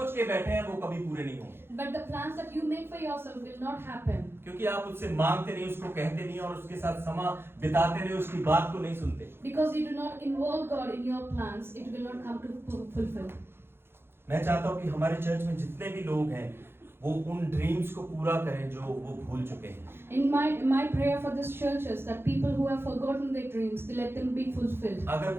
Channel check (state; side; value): late; left; 0.11 ms